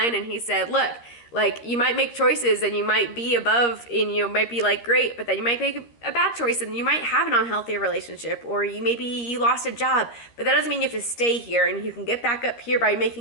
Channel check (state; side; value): late; right; 13 ms